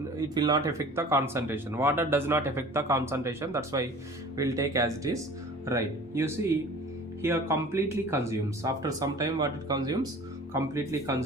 it will not affect the concentration. Water does not affect the concentration, that's why we'll take as it is. Right, you see here completely consumes. After some time what it consumes? Completely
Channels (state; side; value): normal; both; correlation 0.44